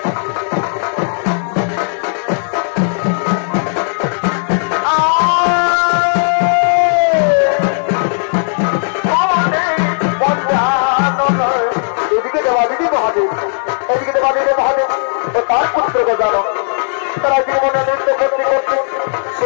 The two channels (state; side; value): silent; right; digital silence